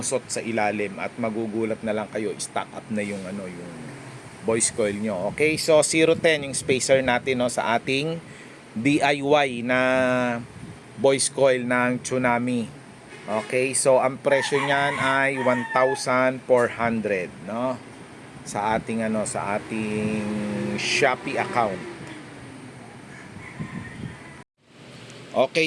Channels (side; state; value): both; identical; correlation 1.00